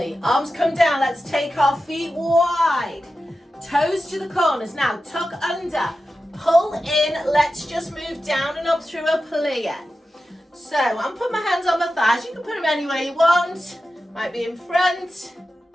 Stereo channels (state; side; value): normal; both; correlation 0.92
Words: Arms come down. Let's take our feet wide. Toes to the corners. Now tuck under. Pull in. Let's just move down and up through a plie. So I'm putting my hands on my thighs. You can put them anywhere you want. Might be in front.